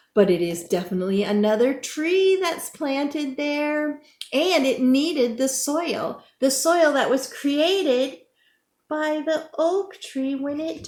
but it is definitely another tree that's planted there, and it needed the soil that was created by the oak tree when it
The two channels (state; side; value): identical; both; correlation 1.00